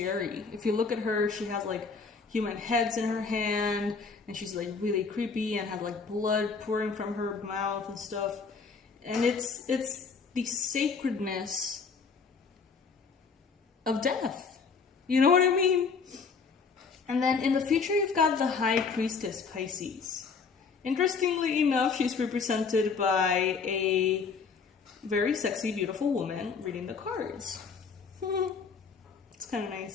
If you look at her, she has like human heads in her hand, and she's like really creepy and has like blood pouring from her mouth and stuff. And it's the sacredness of death. You know what I mean? And then in the future, you've got the High Priestess Pisces. Interestingly enough, she's represented by a very sexy, beautiful woman reading the cards. It's kind of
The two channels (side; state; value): right; quieter; 5.2 dB